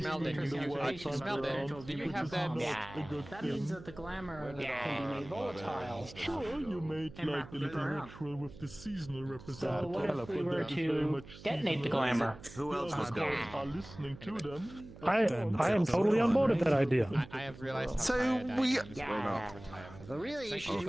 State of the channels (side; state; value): right; noise; hum, 17 dB below the sound